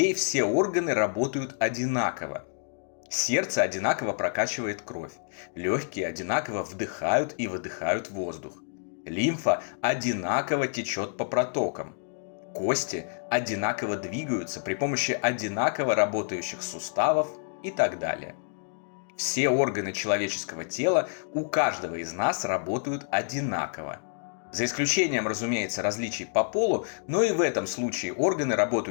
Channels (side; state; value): right; silent; digital silence